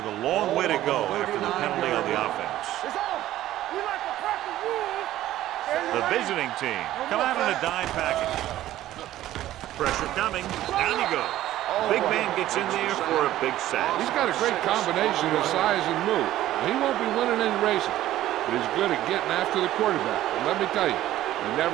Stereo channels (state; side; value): quieter; left; 14.0 dB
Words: a long way to go after the penalty on the offense. It's on. We like to practice rules. The visiting team come out in a dime package. Pressure coming. Down he goes. Big man gets in there for a big sack. He's got a great combination of size and move. He won't be winning any races, but he's good at getting after the quarterback. And let me tell you, you